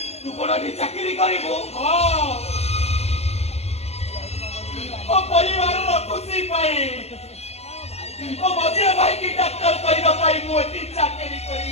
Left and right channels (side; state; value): right; late; 0.31 ms